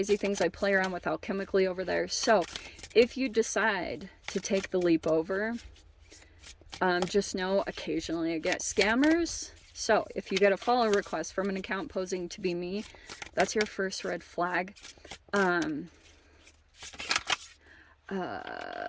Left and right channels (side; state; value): both; identical; correlation 1.00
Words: things I play around with alchemically over there. So if you decide to take the leap over, just know occasionally I get scammers. So if you get a follow request from an account posing to be me, that's your first red flag.